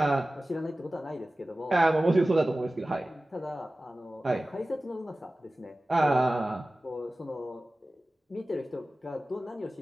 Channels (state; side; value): normal; both; correlation 0.96